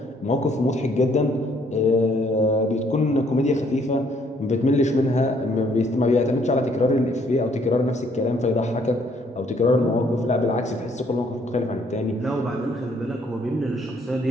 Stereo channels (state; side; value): normal; both; correlation 0.66